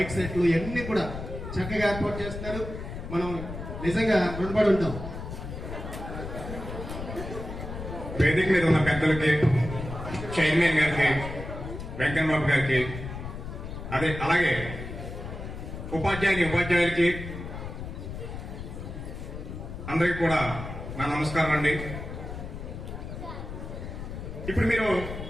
సెట్లు ఇవన్నీ కూడా చక్కగా ఏర్పాటు చేస్తున్నారు. మనం నిజంగా రుణపడి ఉంటాం. వేదిక మీద ఉన్న పెద్దలకి, చైర్మన్ గారికి, వెంకన్నబాబు గారికి, అలాగే ఉపాధ్యాయులకి అందరికీ కూడా నా నమస్కారం అండి. ఇప్పుడు మీరు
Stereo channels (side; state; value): left; noise; rumble, 8 dB below the sound